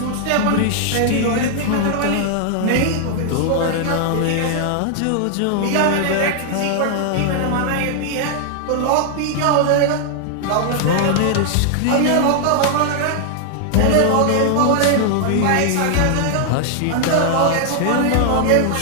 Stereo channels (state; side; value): different; both; correlation 0.00